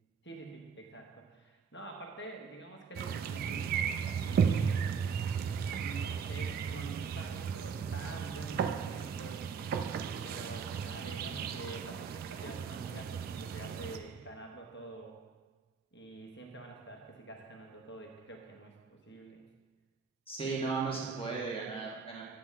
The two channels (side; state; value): left; quieter; 6.0 dB